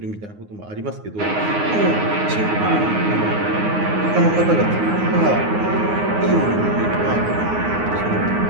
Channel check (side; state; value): left; late; 9.6 ms